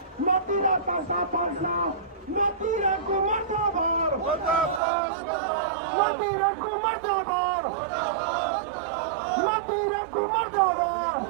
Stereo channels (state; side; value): drops out; left; at 4.8 s